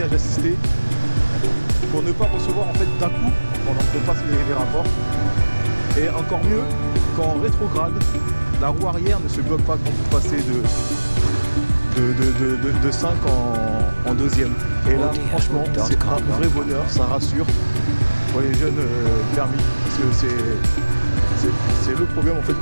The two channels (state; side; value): inverted; both; correlation -1.00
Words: assisté pour ne pas recevoir en fait d'un coup pendant qu'on passe les rapports. Et encore mieux, quand en rétrograde, la roue arrière ne se bloque pas quand vous passez de 5 en deuxième. Et là, franchement, c'est un vrai bonheur, ça rassure pour les jeunes permis, parce que c'est le problème en fait